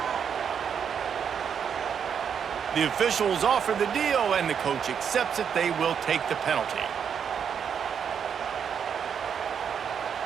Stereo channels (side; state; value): left; quieter; 7.5 dB